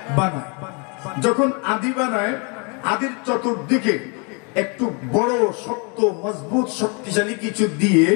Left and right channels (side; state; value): right; quieter; 34.1 dB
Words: বানায়। যখন আদি বানায়, আদির চতুর্দিকে একটু বড় শক্ত মজবুত শক্তিশালী কিছু দিয়ে